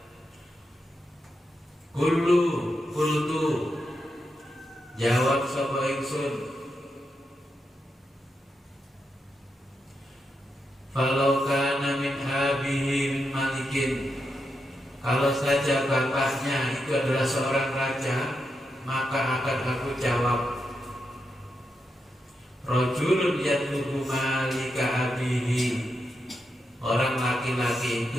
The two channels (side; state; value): both; normal; correlation 0.85